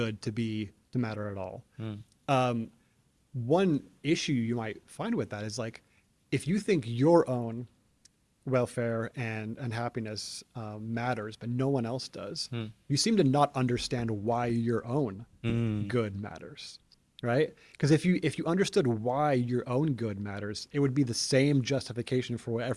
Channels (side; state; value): both; identical; correlation 1.00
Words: to matter at all. One issue you might find with that is like, if you think your own welfare and happiness matters, but no one else does, you seem to not understand why your own good matters, right? Because if you understood why your own good matters, it would be the same justification for why